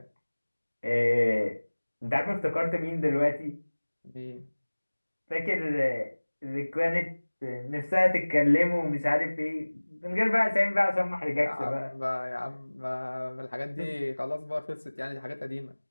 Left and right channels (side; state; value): both; inverted; correlation -1.00